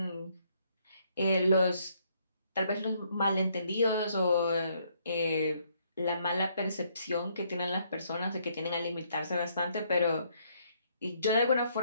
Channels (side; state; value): both; inverted; correlation -0.70